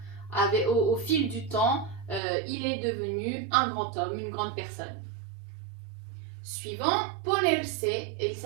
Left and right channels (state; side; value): drops out; left; at 2.2 s